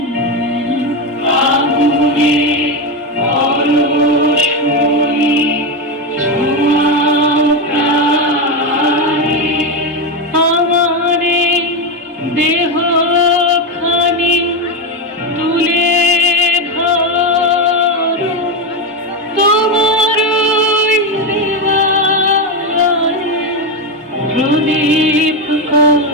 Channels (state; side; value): normal; both; correlation 0.11